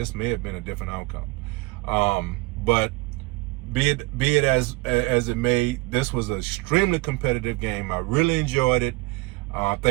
may have been a different outcome. But be it as it may, this was an extremely competitive game. I really enjoyed it. I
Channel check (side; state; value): left; quieter; 23.4 dB